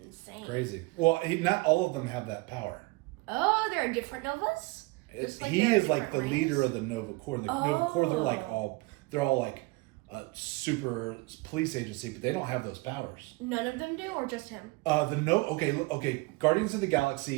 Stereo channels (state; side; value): quieter; left; 24.5 dB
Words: Crazy. Well, not all of them have that power. Oh, there are different Novas? He is like the leader of the Nova Corps. The Nova Corps, they're all like a super police agency, but they don't have those powers. None of them do, or just him? Okay. Guardians of the